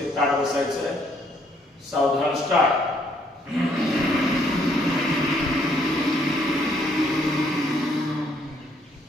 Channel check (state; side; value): normal; both; correlation 0.68